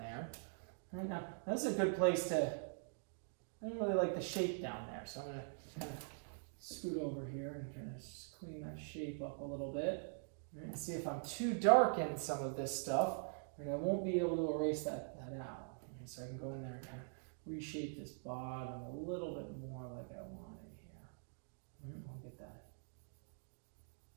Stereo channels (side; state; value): left; silent; digital silence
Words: Right, now, this is a good place to, I don't really like the shape down there, so I'm going to kind of scoot over here and kind of clean that shape up a little bit. Right, and see if I'm too dark in some of this stuff, and I won't be able to erase that out. Right, so I can go in there and kind of reshape this bottom a little bit more like I want it here. Right, we'll get that